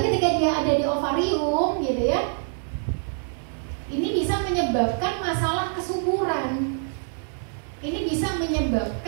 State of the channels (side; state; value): left; silent; 56 dB below the other